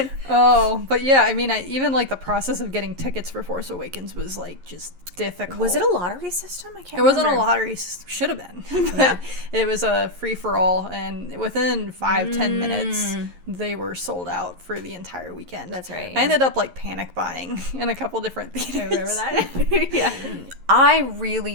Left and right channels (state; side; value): late; left; 11 ms